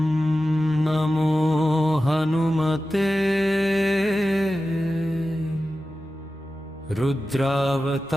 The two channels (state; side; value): normal; both; correlation 0.94